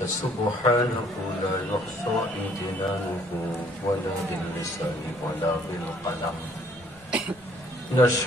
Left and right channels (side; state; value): both; normal; correlation 0.61